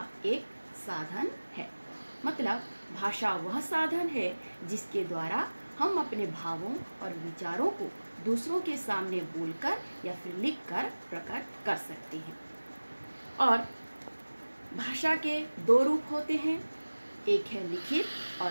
एक साधन है। मतलब भाषा वह साधन है जिसके द्वारा हम अपने भावों और विचारों को दूसरों के सामने बोलकर या फिर लिखकर प्रकट कर सकते हैं। और भाषा के दो रूप होते हैं, एक है लिखित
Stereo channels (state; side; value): inverted; both; correlation -1.00